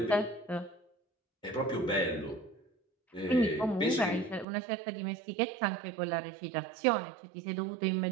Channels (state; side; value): drops out; left; at 4.5 s